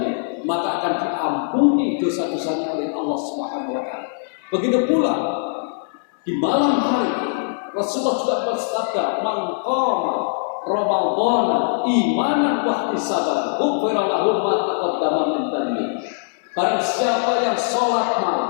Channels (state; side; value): silent; right; digital silence